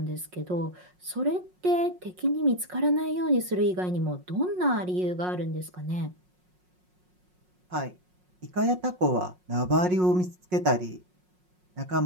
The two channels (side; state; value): left; late; 5.5 ms